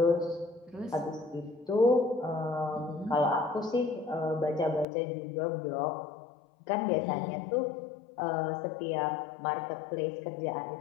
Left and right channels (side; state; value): right; drops out; at 4.9 s